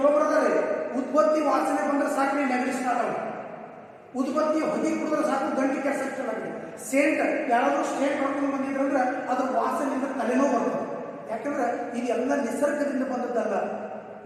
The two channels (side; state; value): both; identical; correlation 1.00